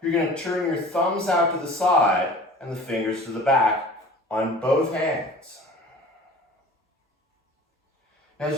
you're going to turn your thumbs out to the side and the fingers to the back on both hands. Now,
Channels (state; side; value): normal; both; correlation 0.43